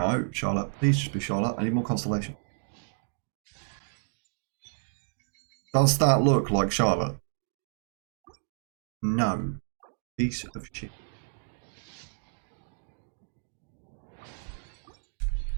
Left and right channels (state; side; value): silent; left; digital silence